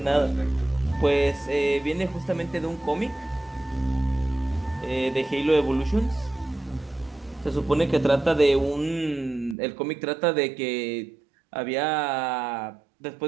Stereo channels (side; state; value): left; drops out; at 9.6 s